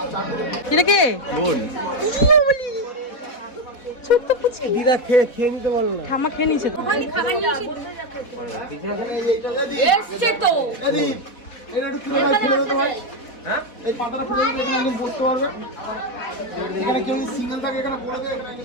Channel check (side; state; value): right; late; 4.1 ms